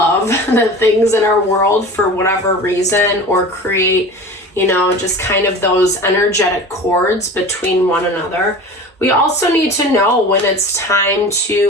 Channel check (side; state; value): both; normal; correlation 0.36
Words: the things in our world for whatever reason, or create just kind of those energetic cords between one another. We also need to know when it's time